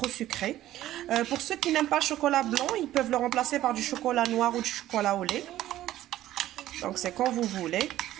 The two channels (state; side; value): quieter; left; 13.9 dB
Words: sucré. Pour ceux qui n'aiment pas le chocolat blanc, ils peuvent le remplacer par du chocolat noir ou du chocolat au lait. Donc c'est quand vous voulez.